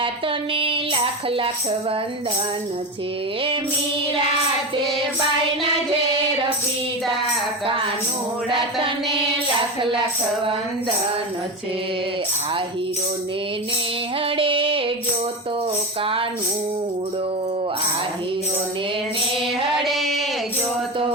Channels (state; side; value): normal; both; correlation 0.21